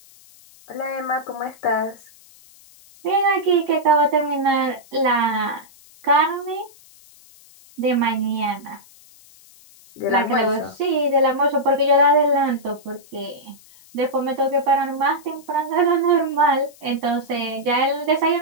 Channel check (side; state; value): left; noise; hiss, 25 dB below the sound